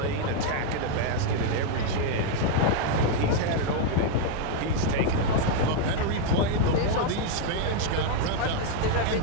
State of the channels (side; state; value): both; different; correlation 0.00